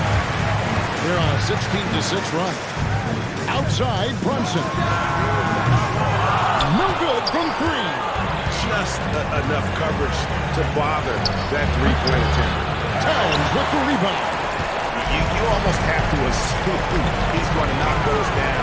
They're on a 16-6 run. Outside, Brunson. No good from 3. Just enough coverage to bother that three-point attempt. Towns with the rebound. You almost have to assume he's going to knock those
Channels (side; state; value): both; identical; correlation 1.00